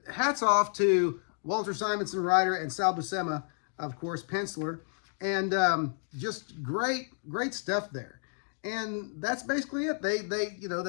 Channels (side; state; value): right; silent; digital silence